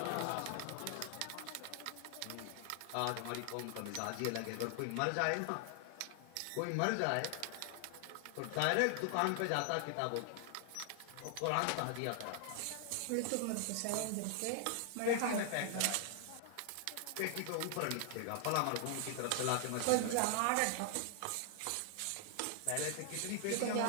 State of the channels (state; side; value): different; both; correlation 0.00